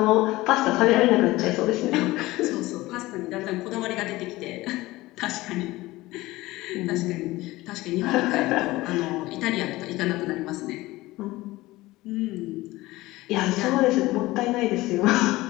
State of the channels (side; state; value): right; quieter; 18.9 dB